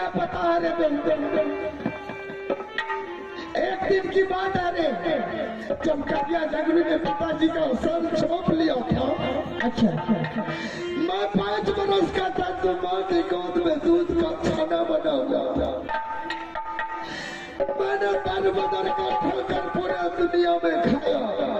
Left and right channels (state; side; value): identical; both; correlation 1.00